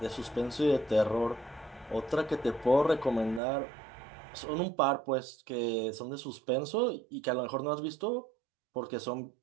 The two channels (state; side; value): drops out; left; at 3.4 s